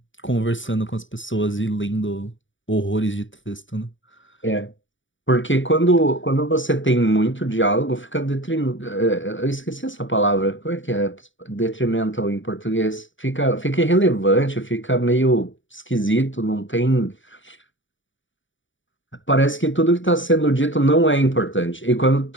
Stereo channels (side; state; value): right; late; 0.56 ms